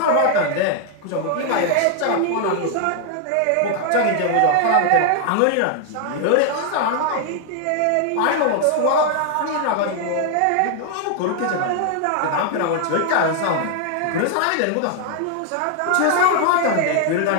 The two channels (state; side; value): different; both; correlation 0.00